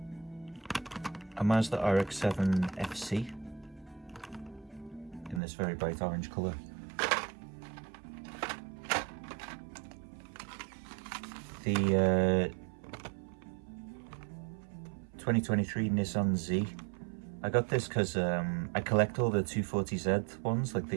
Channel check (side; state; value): left; drops out; at 5.4 s